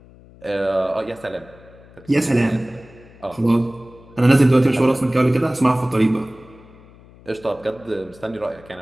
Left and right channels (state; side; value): noise; left; hum, 24 dB below the sound